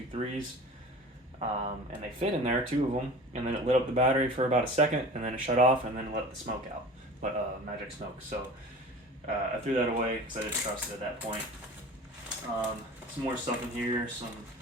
and they fit in there, 2 of them, and then it lit up the battery for about a second, and then it shut off, and then let the smoke out, magic smoke. So I threw that away because I didn't trust it at that point. Some more stuff in here, some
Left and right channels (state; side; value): normal; both; correlation 0.39